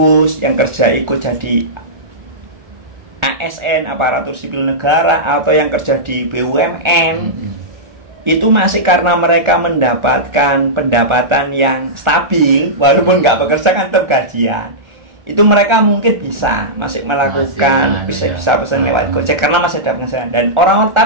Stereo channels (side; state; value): left; late; 1.4 ms